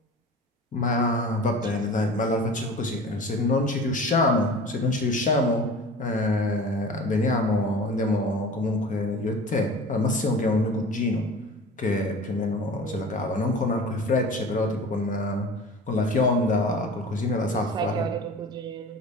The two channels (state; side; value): normal; both; correlation 0.39